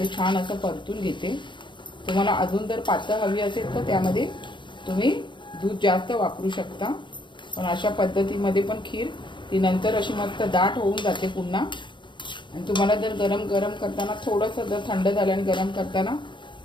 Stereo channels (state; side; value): late; right; 0.23 ms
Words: छान असं परतून घेते. तुम्हाला अजून जर पातळ हवी असेल तर त्यामध्ये तुम्ही दूध जास्त वापरू शकता. पण अशा पद्धतीमध्ये पण खीर ती नंतर अशी मस्त दाट होऊन जाते पुन्हा. आणि तुम्हाला जर गरम करताना थोडंसं जर थंड झालं आणि गरम करताना